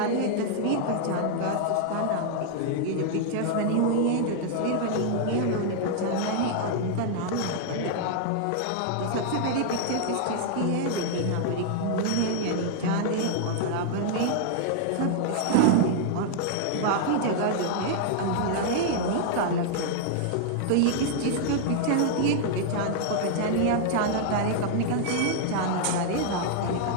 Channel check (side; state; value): both; different; correlation 0.00